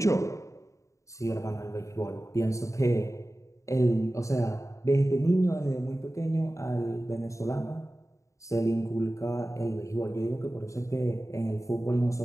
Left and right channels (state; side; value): late; right; 0.15 ms